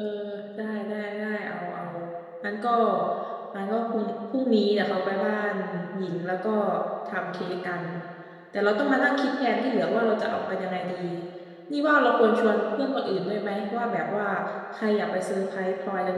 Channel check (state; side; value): identical; both; correlation 1.00